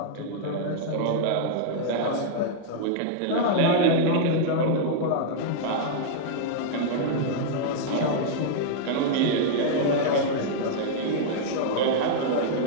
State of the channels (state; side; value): different; both; correlation -0.01